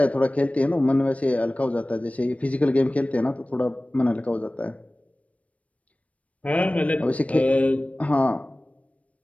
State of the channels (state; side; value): late; right; 0.066 ms